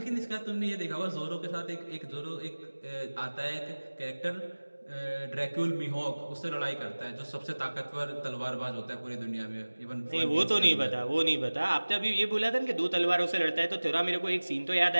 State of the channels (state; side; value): inverted; both; correlation -1.00